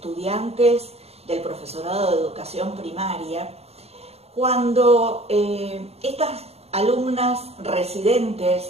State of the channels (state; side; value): late; left; 0.30 ms